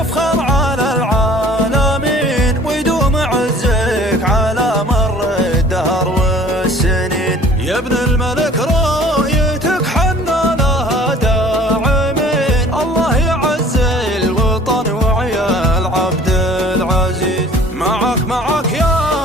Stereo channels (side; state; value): both; normal; correlation 0.50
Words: على العالمين ويدوم عزك على مر الدهر والسنين. يا ابن الملك رؤيتك حنا لها داعمين. الله يعز الوطن وعيال عبد العزيز. معك